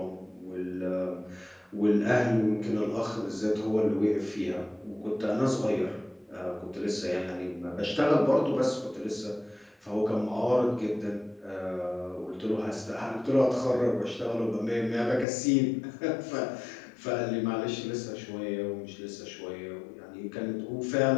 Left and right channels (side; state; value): right; drops out; at 15.2 s